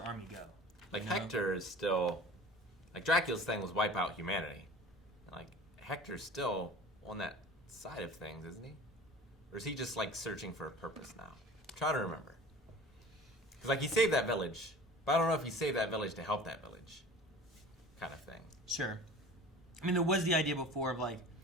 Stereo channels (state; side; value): normal; both; correlation 0.41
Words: army go? Like, Hector is still... Like, Dracula's thing was wipe out humanity. And, like, Hector's still on that side of things, isn't he? Or is he just, like, searching for a purpose now? I'm trying to remember. Because, like, he saved that village, but I don't know if he saved that village to help that village, kind of thing. Sure. I mean, there was the idea before of, like...